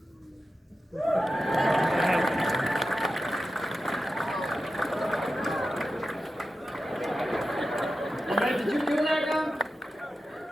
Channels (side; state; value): both; normal; correlation 0.92